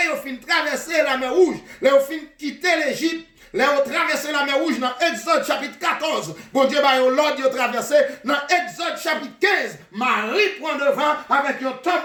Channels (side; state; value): both; identical; correlation 1.00